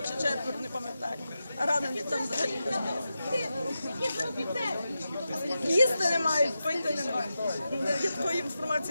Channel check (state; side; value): inverted; both; correlation -0.90